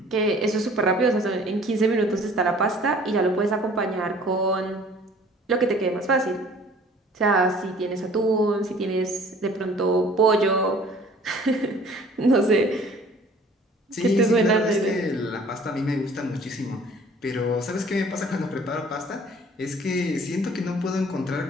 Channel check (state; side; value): normal; both; correlation 0.51